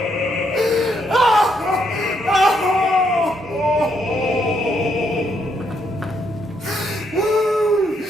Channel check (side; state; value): both; normal; correlation 0.75